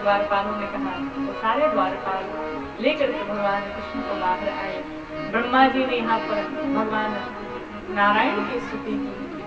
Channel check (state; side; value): identical; both; correlation 1.00